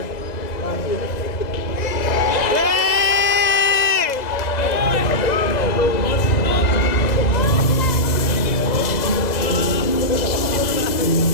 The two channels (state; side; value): late; right; 2.0 ms